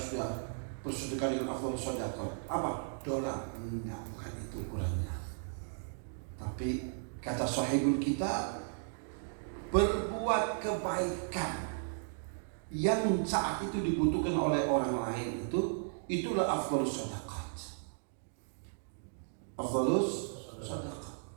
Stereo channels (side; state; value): left; silent; digital silence